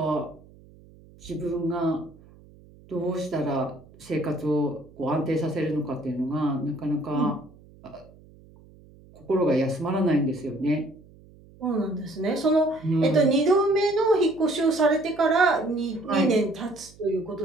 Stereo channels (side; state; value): right; noise; hum, 24 dB below the sound